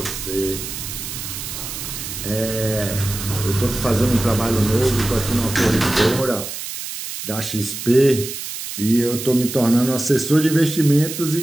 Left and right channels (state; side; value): noise; right; hiss, 8 dB below the sound